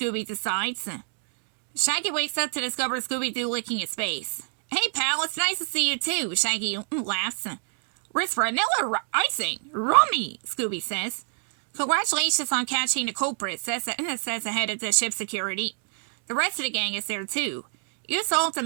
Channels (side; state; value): left; silent; digital silence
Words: decides. Shaggy wakes up to discover Scooby-Doo licking his face. Hey, pal, it's nice to see you too, Shaggy laughs. Wrist vanilla icing, rummy, Scooby says. Congratulations on catching the culprit, says the head of the ship's security. The rest of the gang is there too. You solved the